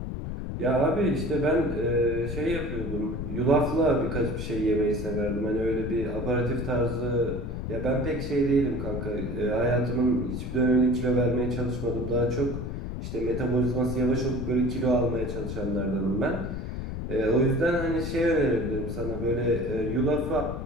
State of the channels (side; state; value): left; noise; rumble, 5 dB below the sound